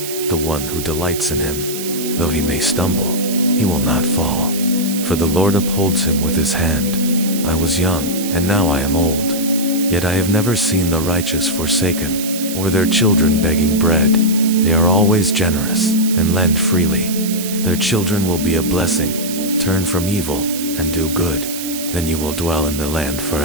the one who delights in him. Though he may stumble, he will not fall. For the Lord upholds him with his hand. I was young, and now I am old. Yet I have never seen the righteous forsaken, or their children begging bread. They are always generous, and lend freely. Their children will be a blessing. Turn from evil, and do good. Then you will dwell in the land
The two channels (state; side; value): noise; right; hiss, 8 dB below the sound